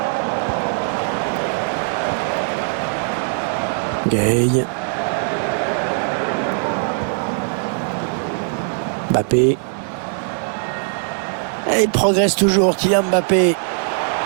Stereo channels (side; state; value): left; silent; 66 dB below the other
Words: Gay. Mbappé. Et il progresse toujours, Kylian Mbappé.